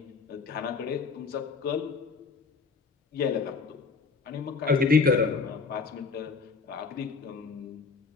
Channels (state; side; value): quieter; right; 4.9 dB